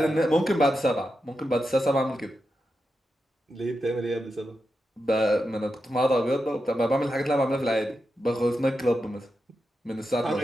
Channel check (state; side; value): normal; both; correlation 0.88